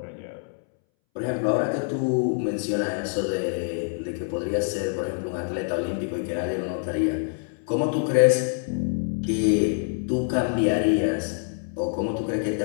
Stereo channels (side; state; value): right; silent; 61 dB below the other